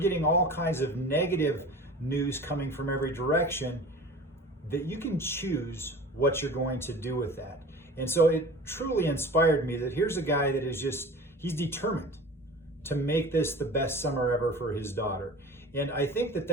all kinds of negative news coming from every direction, that you can choose what you're going to do with that. And so it truly inspired me that here's a guy that he's determined to make this the best summer ever for his daughter. And I think that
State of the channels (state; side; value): normal; both; correlation 0.39